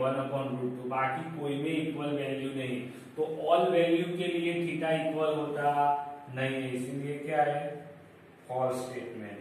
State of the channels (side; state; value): both; identical; correlation 1.00